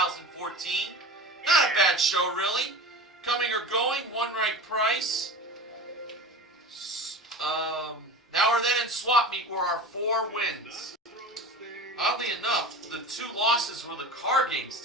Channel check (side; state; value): both; normal; correlation 0.32